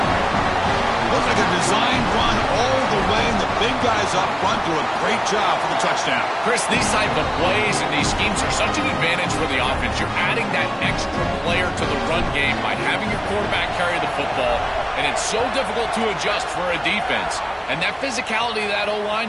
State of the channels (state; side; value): identical; both; correlation 1.00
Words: Looks like a design run all the way, and the big guys up front do a great job for the touchdown. Chris, these type of plays and these schemes are such an advantage for the offense. You're adding that extra player to the run game by having your quarterback carry the football, and it's so difficult to adjust for a defense. And that physicality of that